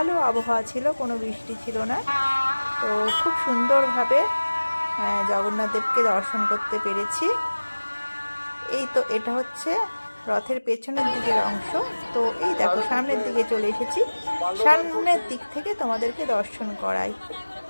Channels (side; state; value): both; inverted; correlation -1.00